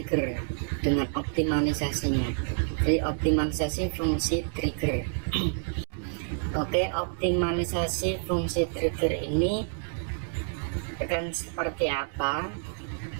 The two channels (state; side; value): silent; left; digital silence